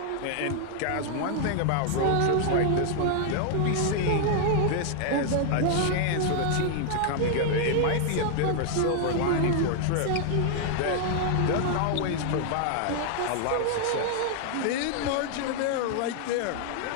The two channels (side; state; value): both; different; correlation 0.00